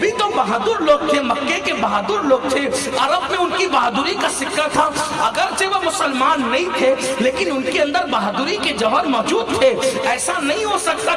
तो बहादुर लोग थे, मक्के के बहादुर लोग थे। अरब में उनकी बहादुरी का सिक्का था, अगरचे वो मुसलमान नहीं थे लेकिन उनके अंदर बहादुरी के जौहर मौजूद थे। ऐसा नहीं हो सकता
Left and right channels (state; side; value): identical; both; correlation 1.00